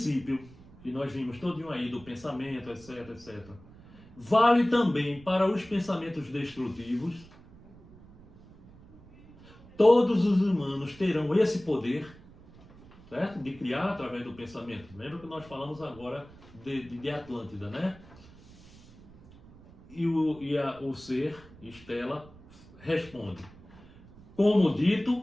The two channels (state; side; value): noise; right; rumble, 22 dB below the sound